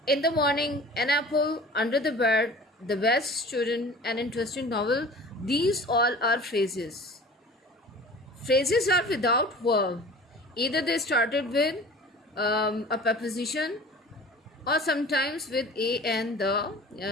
In the morning, an apple, under the bed, the best student, an interesting novel. These all are phrases. Phrases are without verb. Either they started with a preposition, or sometimes with a and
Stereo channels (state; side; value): normal; both; correlation 0.42